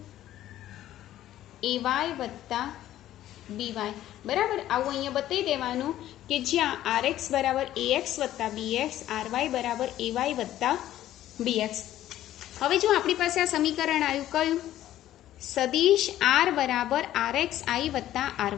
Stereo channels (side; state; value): right; quieter; 13.1 dB